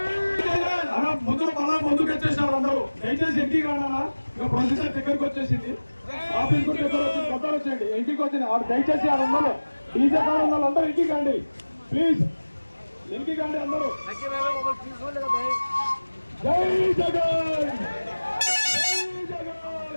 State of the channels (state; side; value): inverted; both; correlation -1.00